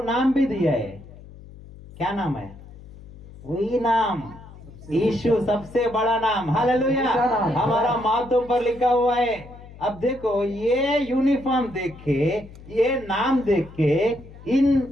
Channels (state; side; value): noise; left; hum, 18 dB below the sound